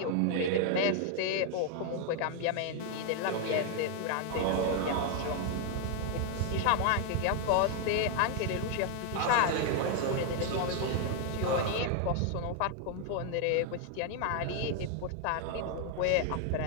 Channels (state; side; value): different; both; correlation 0.00